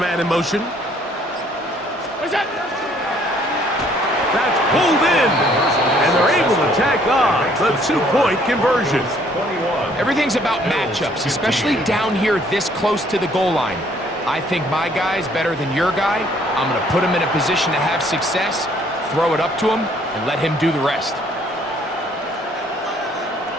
in motion. What's that? That's pulled in. And they're able to tack on the 2-point conversion. Everything's about matchups, especially down here this close to the goal line. I think my guy's better than your guy. I'm going to put him in a position to have success, throw it up to him, and let him do the rest.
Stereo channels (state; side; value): normal; both; correlation 0.62